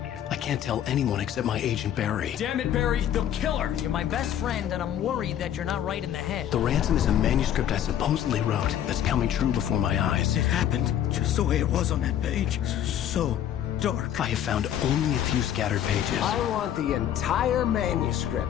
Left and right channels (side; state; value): right; quieter; 10.5 dB